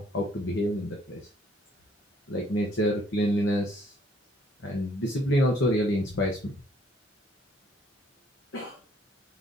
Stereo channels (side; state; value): both; normal; correlation 0.64